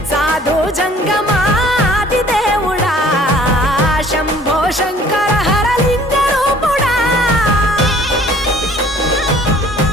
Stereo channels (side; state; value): both; normal; correlation 0.54